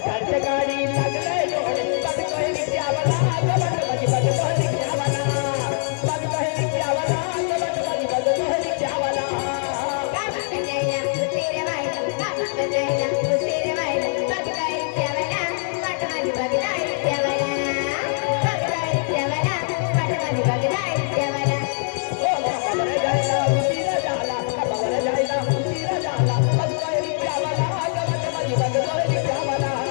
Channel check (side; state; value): right; silent; 64 dB below the other